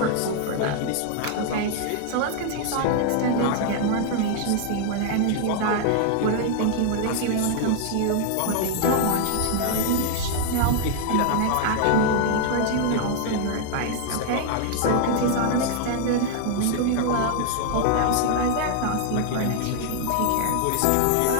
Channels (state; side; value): different; both; correlation 0.00